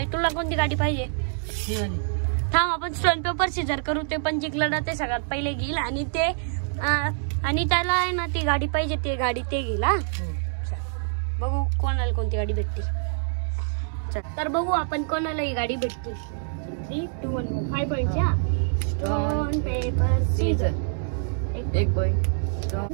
तुला कोणती गाडी पाहिजे? थांब आपण स्टोन पेपर सीझर करू। ते पण जिंकलं ते सगळ्यात पहिले घेईल आणि त्याला आहे ना ती गाडी पाहिजे, ती गाडी ते घेईल। हा बघू कोणाला कोणती गाडी भेटते। तर बघू आपण कोणाला ही गाडी भेटते। 3, 2, 1 5 पॉइंटच्या स्टोन पेपर सीझर। एक पॉइंट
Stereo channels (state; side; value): silent; left; 61 dB below the other